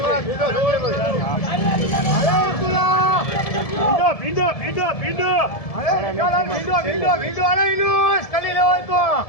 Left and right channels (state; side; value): late; right; 1.7 ms